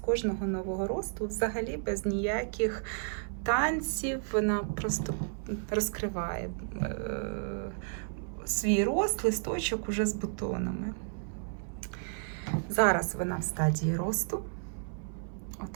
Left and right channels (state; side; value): silent; left; 56 dB below the other